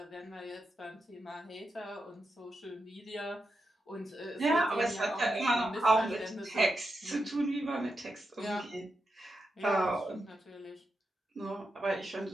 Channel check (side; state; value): both; normal; correlation 0.87